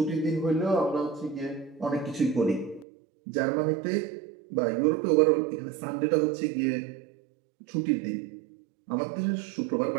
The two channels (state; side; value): drops out; left; at 2.9 s